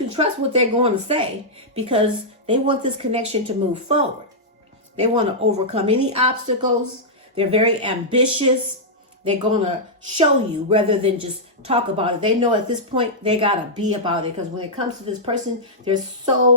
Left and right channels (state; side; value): normal; both; correlation -0.10